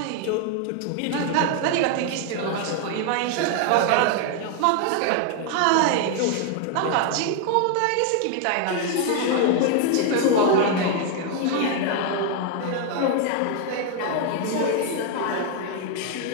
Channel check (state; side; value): different; both; correlation 0.00